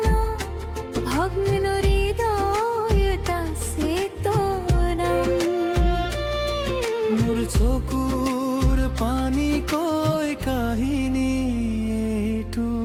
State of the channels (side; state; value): both; identical; correlation 1.00